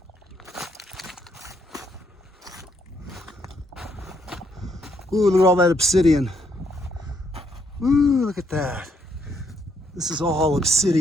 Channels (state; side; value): normal; both; correlation 0.73